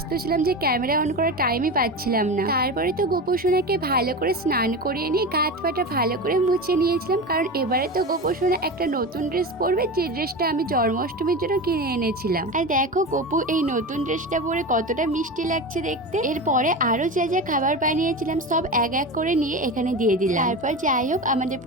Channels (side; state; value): both; normal; correlation 0.25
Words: ছিলাম যে ক্যামেরা অন করার টাইমই পাচ্ছিলাম না। তারপরে তো গোপুসোনাকে ভালো করে স্নান করিয়ে নিয়ে গাত পাটা ভালো করে মুছে নিয়েছিলাম, কারণ এবারে তো গোপুসোনা একটা নতুন ড্রেস পরবে, যে ড্রেসটা আমি জন্মাষ্টমীর জন্য কিনে এনেছিলাম। আর দেখো গোপু এই নতুন ড্রেসটা পরে কতটা মিষ্টি লাগছে দেখতে। এরপরে আরো যা যা খাবার বানিয়েছিলাম সব এক এক করে নিয়ে এখানে দিয়ে দিলাম। তারপর যাই হোক আমাদের